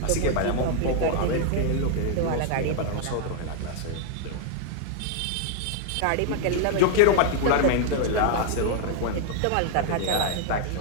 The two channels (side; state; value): both; different; correlation -0.01